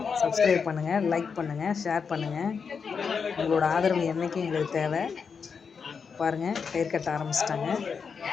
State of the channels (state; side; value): quieter; right; 5.9 dB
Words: சப்ஸ்கிரைப் பண்ணுங்கள், லைக் பண்ணுங்கள், ஷேர் பண்ணுங்கள். உங்களோட ஆதரவு என்றைக்கும் எங்களுக்கு தேவை. பாருங்கள், கயிறு கட்ட ஆரம்பிச்சிட்டாங்க.